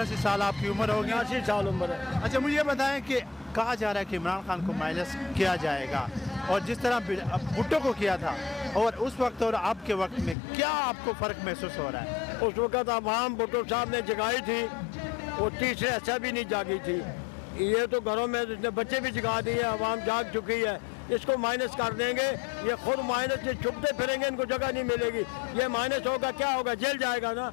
साल आपकी उम्र होगी। 80 साल उम्र है। अच्छा, मुझे बताएं कि कहा जा रहा है कि इमरान खान को माइनस किया जाएगा, और जिस तरह भुट्टो को किया था और उस वक्त और अब के वक्त में क्या आपको फ़र्क महसूस हो रहा है? उस वक्त आवाम भुट्टो साहब ने जगाई थी, वो तीसरे ऐसा भी नहीं जागी थी। ये तो घरों में इसने बच्चे भी जगा दिए, आवाम जाग चुकी है। इसको माइनस कर देंगे, ये खुद माइनस से छुपते फिरेंगे, इनको जगह नहीं मिलेगी। ये माइनस होगा, क्या होगा? जेल जाएगा ना।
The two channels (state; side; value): drops out; right; at 10.4 s